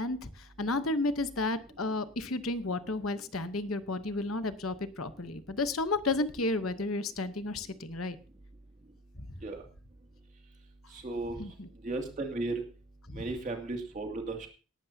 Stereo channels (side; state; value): both; normal; correlation 0.35